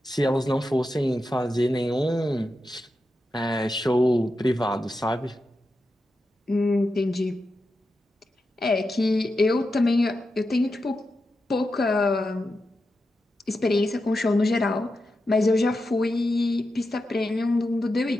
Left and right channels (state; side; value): normal; both; correlation 0.89